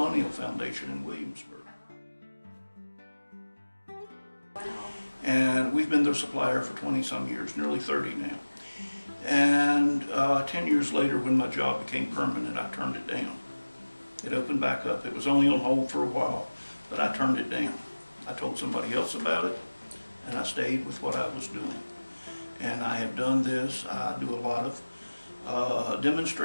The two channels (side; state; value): both; inverted; correlation -1.00